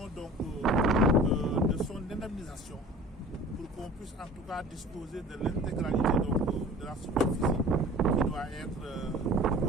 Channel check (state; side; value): normal; both; correlation 0.43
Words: de son indemnisation pour qu'on puisse en tout cas disposer de l'intégralité de la superficie qui doit être